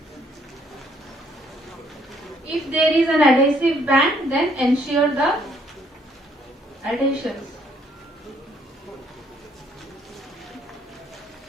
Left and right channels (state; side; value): normal; both; correlation 0.67